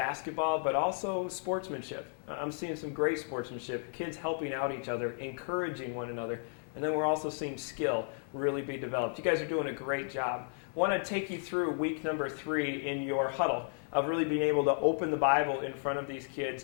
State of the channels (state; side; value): silent; right; 55 dB below the other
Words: but also sportsmanship. I'm seeing some great sportsmanship, kids helping out each other, encouraging one another, and then we're also seeing skill really be developed. You guys are doing a great job. I want to take you through week number 3 in your huddle of really being able to open the Bible in front of these kids